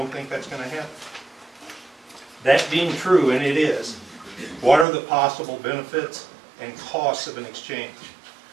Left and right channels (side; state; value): left; drops out; at 4.9 s